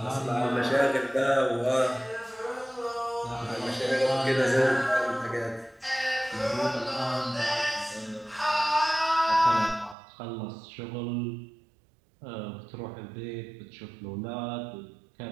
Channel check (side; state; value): left; drops out; at 10.0 s